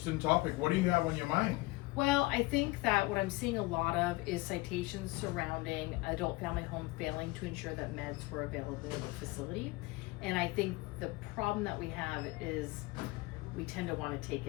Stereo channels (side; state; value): right; quieter; 22.0 dB